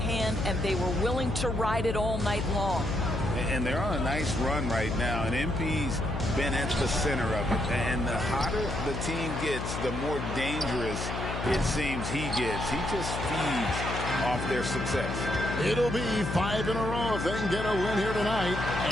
and they were willing to ride it all night long. And they're on a nice run right now, and MP's been at the center of it. And the hotter the team gets, the more dangerous it seems he gets. He just feeds off their success. It'll be 5 in a row if they can get a win here tonight.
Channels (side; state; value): left; noise; hum, 5 dB below the sound